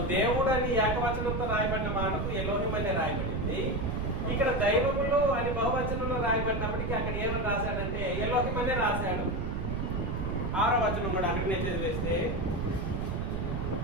దేవుడు అని ఏకవచనంతో రాయబడిన మాటకు ఎలోహిం అని రాయబడింది. ఇక్కడ దైవములు అని బహువచనంలో రాయబడినప్పటికీ అక్కడ ఏమని రాశాడంటే ఎలోహిం అనే రాశాడు. 6వ వచనం కూడా అక్కడనే చదివేస్తే,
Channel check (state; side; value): noise; right; rumble, 2 dB below the sound